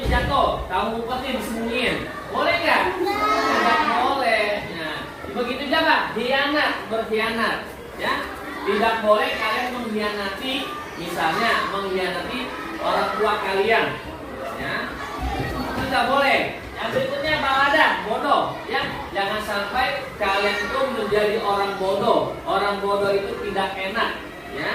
kamu umpetin disembunyiin, boleh nggak? Tidak boleh. Nah, begitu juga berkhianat, ya. Tidak boleh kalian mengkhianati, misalnya mengkhianati orang tua kalian, ya. Itu tidak boleh. Yang berikutnya baladah, bodoh, ya. Jangan sampai kalian itu menjadi orang bodoh. Orang bodoh itu tidak enak,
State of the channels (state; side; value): identical; both; correlation 1.00